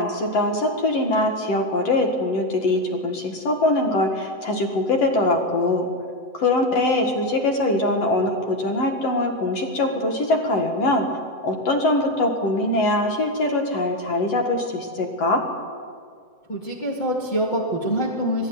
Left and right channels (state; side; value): late; right; 7.8 ms